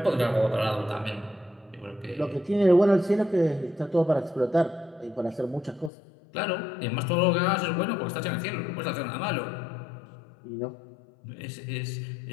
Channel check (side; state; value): right; drops out; at 5.9 s